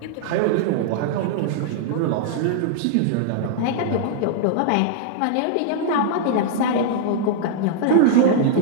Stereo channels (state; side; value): different; both; correlation -0.01